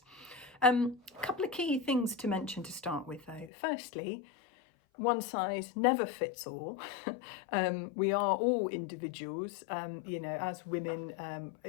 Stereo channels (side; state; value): right; drops out; at 3.5 s